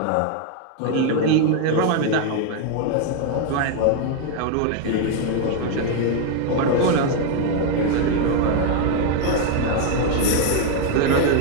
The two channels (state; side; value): different; both; correlation 0.01